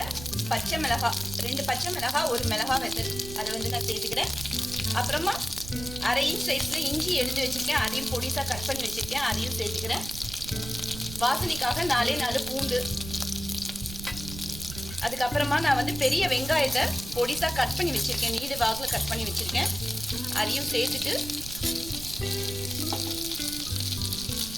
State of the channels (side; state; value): right; noise; rumble, 11 dB below the sound